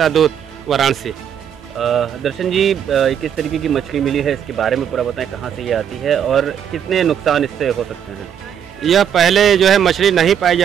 दूत, वाराणसी। दर्शन जी, किस तरीके की मछली मिली है, इसके बारे में पूरा बताएं, कहाँ से ये आती है और कितने नुकसान इससे हो सकते हैं? यह पहले जो है मछली नहीं पाई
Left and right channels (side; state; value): left; quieter; 8.8 dB